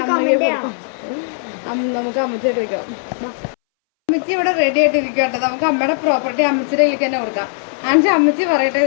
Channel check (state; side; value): silent; right; 64 dB below the other